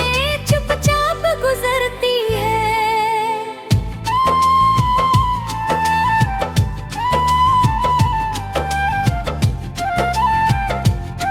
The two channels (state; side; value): identical; both; correlation 1.00